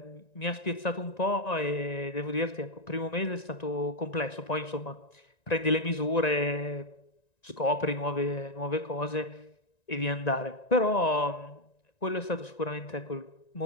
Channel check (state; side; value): late; right; 1.9 ms